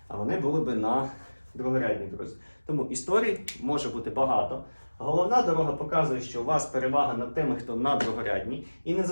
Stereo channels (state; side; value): inverted; both; correlation -1.00